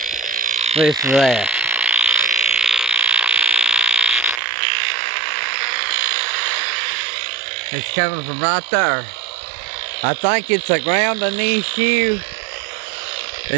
Listen to that. It's coming from right there. I think it's a grounding issue.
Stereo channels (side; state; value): left; drops out; at 4.4 s